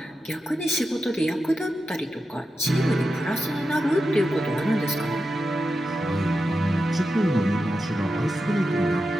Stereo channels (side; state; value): both; normal; correlation 0.90